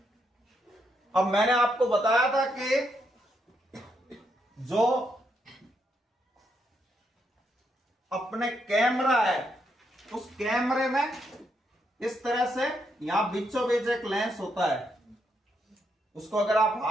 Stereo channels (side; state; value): both; normal; correlation 0.78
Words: अब मैंने आपको बताया था कि जो अपने कैमरा है उस कैमरे में इस तरह से यहां बीचों बीच एक लेंस होता है, उसको अगर आप